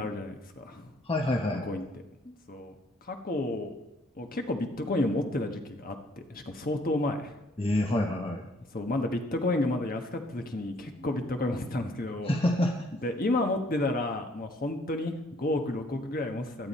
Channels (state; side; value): normal; both; correlation 0.63